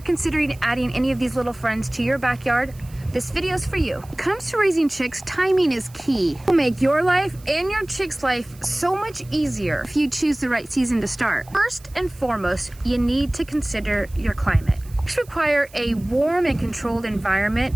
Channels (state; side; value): noise; right; hiss, 24 dB below the sound